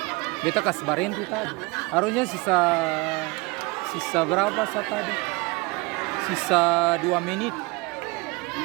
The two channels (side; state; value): left; quieter; 25.4 dB